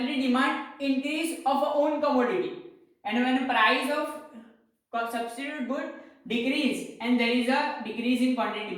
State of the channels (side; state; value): both; identical; correlation 1.00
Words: demand increase of a own commodity, and when price of substitute good decrease and there is a decrease in quantity